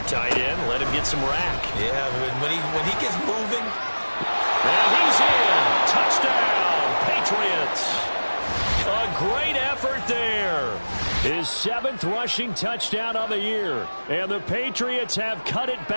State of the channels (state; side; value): inverted; both; correlation -1.00